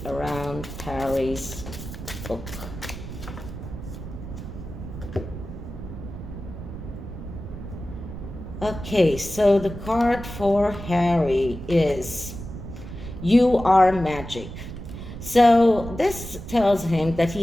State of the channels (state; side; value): noise; right; rumble, 10 dB below the sound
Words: around Harry's book. Okay, so the card for Harry is You Are Magic. So this tells him that